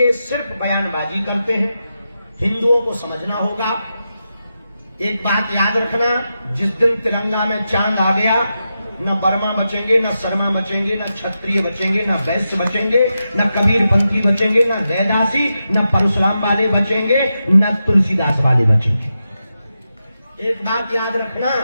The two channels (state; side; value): inverted; both; correlation -0.88